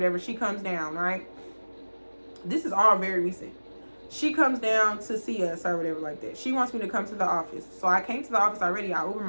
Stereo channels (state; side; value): inverted; both; correlation -1.00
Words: She comes down, right? This is all very recent. She comes down to see us or whatever like that. She wants me to come to the office. So I came to the office already. I Ubered